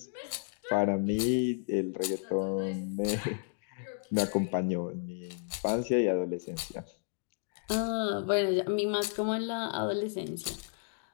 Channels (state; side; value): silent; right; digital silence